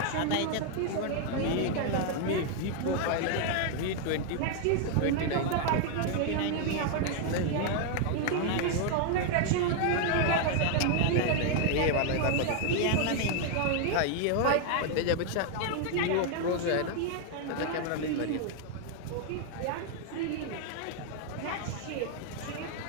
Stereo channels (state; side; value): different; both; correlation 0.00